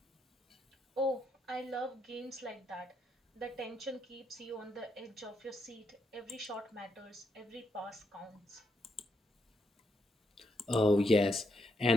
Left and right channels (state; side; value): normal; both; correlation 0.79